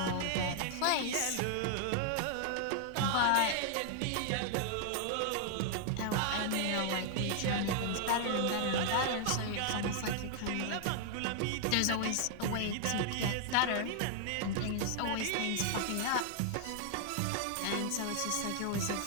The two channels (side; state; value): both; different; correlation -0.01